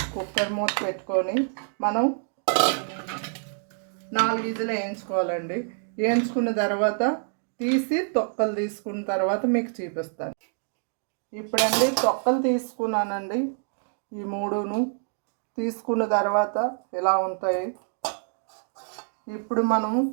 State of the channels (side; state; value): left; silent; 60 dB below the other